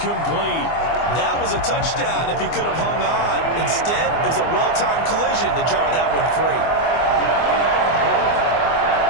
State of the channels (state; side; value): late; right; 24 ms